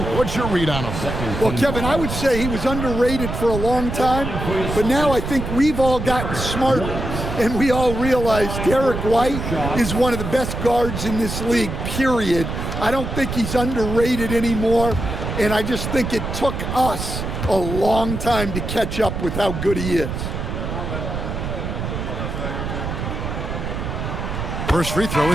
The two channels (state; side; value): noise; right; rumble, 4 dB below the sound